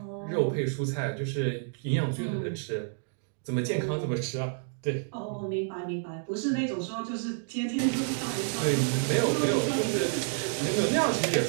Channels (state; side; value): silent; left; digital silence